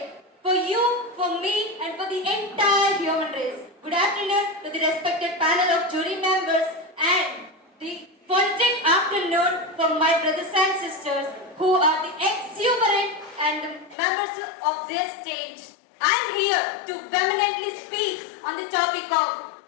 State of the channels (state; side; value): drops out; right; at 14.0 s